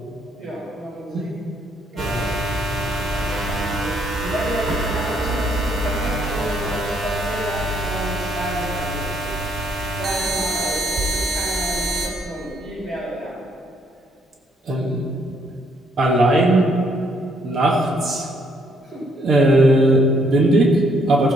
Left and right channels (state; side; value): normal; both; correlation 0.69